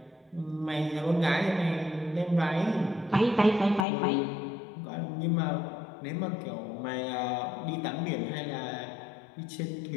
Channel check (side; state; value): right; drops out; at 3.9 s